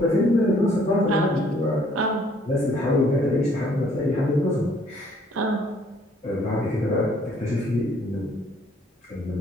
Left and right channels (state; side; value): normal; both; correlation 0.62